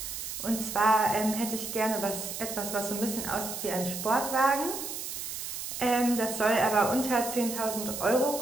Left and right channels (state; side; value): noise; right; hiss, 6 dB below the sound